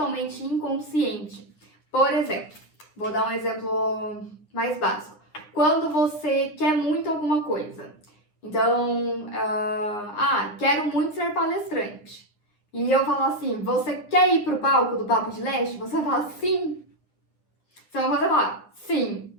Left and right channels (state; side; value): late; right; 9.8 ms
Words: inconsciente. Por exemplo, vou dar um exemplo mais básico. Quando você quer muito alguma coisa, então, quero muito ser palestrante. E eu falo assim, você quer ir pro palco do Papo de Leste? Você fala sim. Então você fala sim.